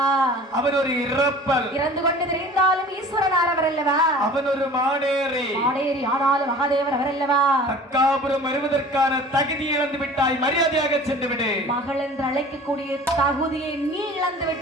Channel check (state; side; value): normal; both; correlation 0.43